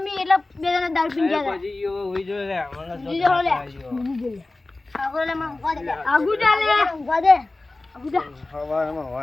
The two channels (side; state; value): right; quieter; 3.1 dB